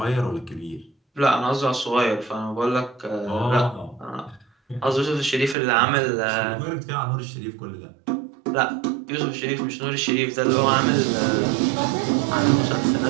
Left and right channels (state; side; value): drops out; left; at 5.6 s